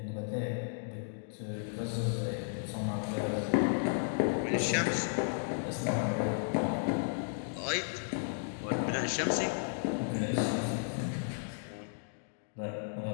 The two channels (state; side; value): silent; right; digital silence